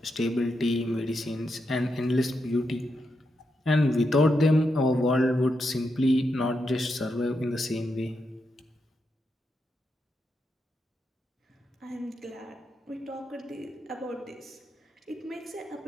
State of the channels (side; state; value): both; normal; correlation 0.84